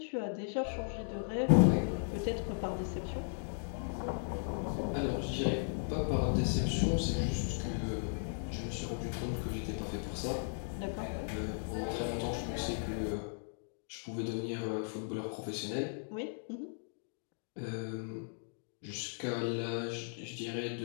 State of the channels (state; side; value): silent; right; digital silence